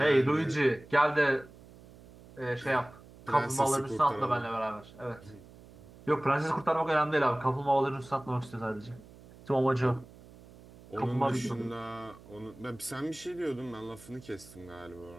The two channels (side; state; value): right; noise; hum, 21 dB below the sound